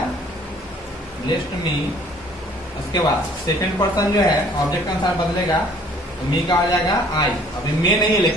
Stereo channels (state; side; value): normal; both; correlation 0.56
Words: ब्लेस्ड मी। उसके बाद सेकंड पर्सन जो है ऑब्जेक्ट के अनुसार बदलेगा तो मी का हो जाएगा आई। अभी मे नहीं है